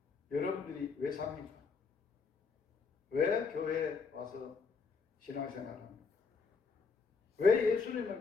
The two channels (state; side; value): quieter; right; 5.0 dB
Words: 여러분들이 왜 삽니까? 왜 교회에 와서 신앙생활합니까? 왜 예수님을